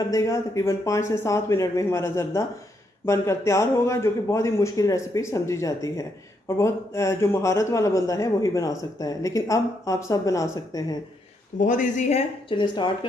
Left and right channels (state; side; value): normal; both; correlation 0.77